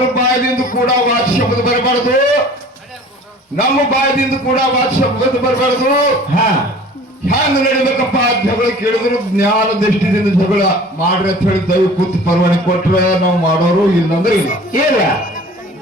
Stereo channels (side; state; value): both; normal; correlation 0.46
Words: ಬಾಯದಿಂದ ಕೂಡ ವಾಚ ಶಬ್ದ ಬರಬಾರ್ದು, ನಮ್ಮ ಬಾಯದಿಂದ ಕೂಡ ವಾಚ ಶಬ್ದ ಬರಬಾರ್ದು. ಹ್ಯಾಂಗ ನಡಿಬೇಕಪ್ಪ ಜಗಳ ಕೇಳಿದ್ರು ಜ್ಞಾನ ದೃಷ್ಟಿದಿಂದ ಜಗಳ ಮಾಡ್ರಿ ಅಂತ ಹೇಳಿ ದೈವ ಕೂತು ಪರವಾನಗಿ ಕೊಟ್ರೆ ನಾವು ಮಾಡೋರು, ಇಲ್ಲಂದ್ರೆ ಇಲ್ಲ.